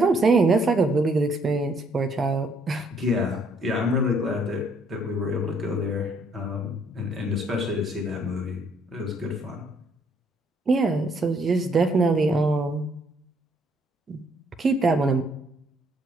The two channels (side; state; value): both; normal; correlation 0.67